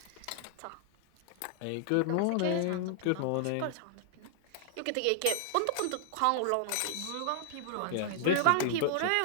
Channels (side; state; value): both; different; correlation -0.01